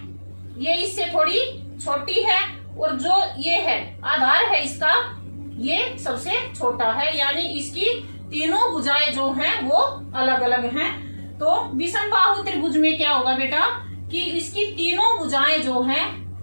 ये इससे थोड़ी छोटी है, और जो ये है आधार है इसका, ये सबसे छोटा है। यानी इसकी तीनों भुजाएं जो हैं वो अलग अलग हैं। तो विषमबाहु त्रिभुज में क्या होगा बेटा कि इसकी तीनों भुजाएं जो हैं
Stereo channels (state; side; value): inverted; both; correlation -1.00